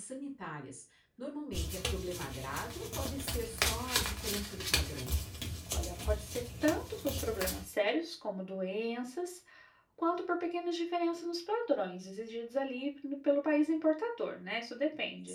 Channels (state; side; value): identical; both; correlation 1.00